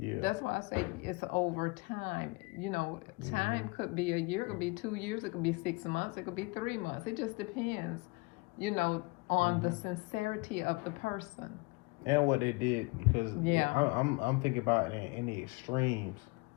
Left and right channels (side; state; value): right; quieter; 26.5 dB